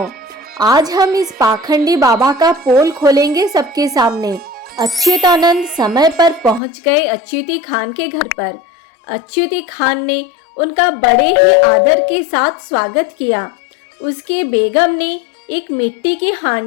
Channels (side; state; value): right; drops out; at 6.6 s